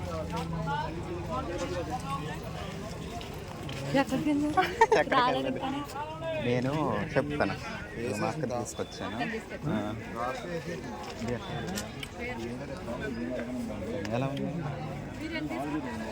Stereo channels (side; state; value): both; identical; correlation 1.00